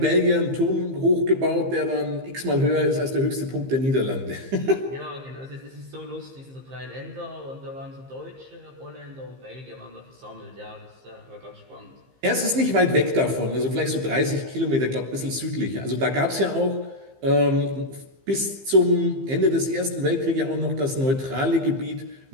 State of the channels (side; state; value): left; late; 15 ms